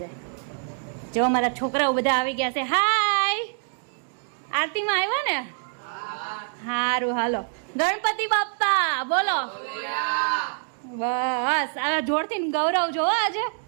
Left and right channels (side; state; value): left; silent; digital silence